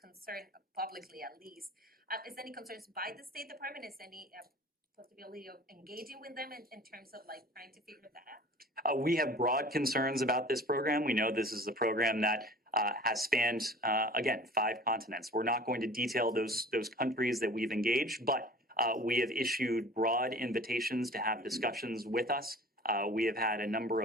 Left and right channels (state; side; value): normal; both; correlation 0.44